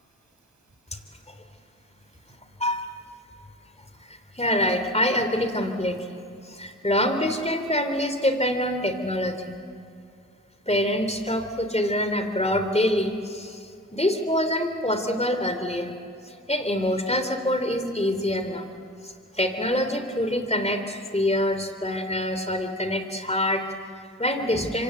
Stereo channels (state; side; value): normal; both; correlation 0.37